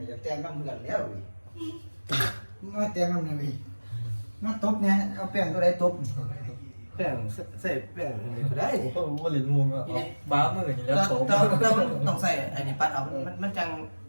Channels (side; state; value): both; inverted; correlation -1.00